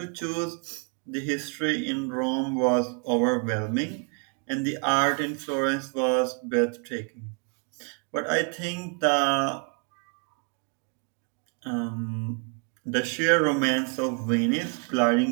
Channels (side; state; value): left; quieter; 36.0 dB